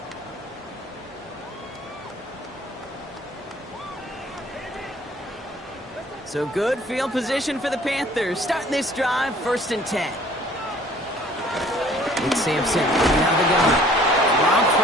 So good field position for the Panthers. Starting this drive, 1st and 10. It's Sampson coming out of the gun. Rob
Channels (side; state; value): both; normal; correlation 0.54